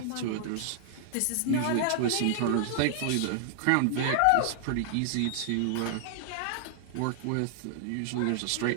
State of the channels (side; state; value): both; different; correlation 0.00